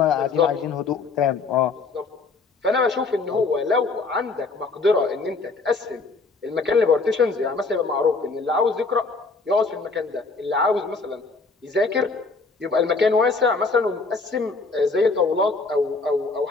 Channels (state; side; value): quieter; right; 4.1 dB